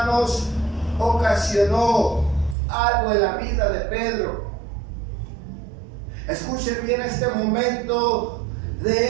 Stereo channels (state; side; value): drops out; left; at 2.6 s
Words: ocasionó algo en la vida de Pedro. Escuchen bien este momento